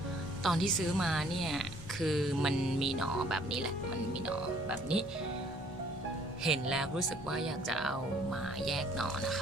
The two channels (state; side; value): normal; both; correlation 0.59